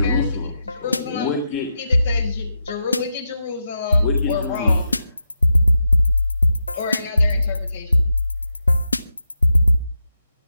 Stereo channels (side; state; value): both; inverted; correlation -0.87